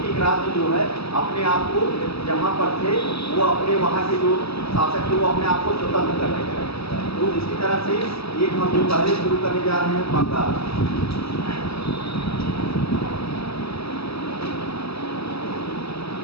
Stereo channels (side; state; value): right; late; 0.78 ms